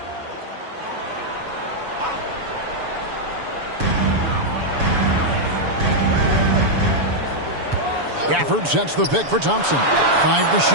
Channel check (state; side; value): late; left; 7.0 ms